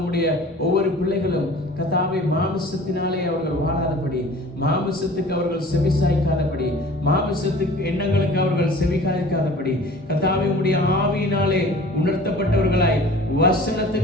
ஒவ்வொரு பிள்ளைகளும், கர்த்தாவே மாமிசத்தினாலே அவர்கள் வாழாதபடி, மாமிசத்துக்கு அவர்கள் செவிசாய்க்காதபடி, மாமிசத்துக்கு எண்ணங்களுக்கு அவர்கள் செவிசாய்க்காதபடி, கர்த்தாவே உம்முடைய ஆவியினாலே உணர்த்தப்பட்டவர்களாய்,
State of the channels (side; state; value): both; normal; correlation 0.45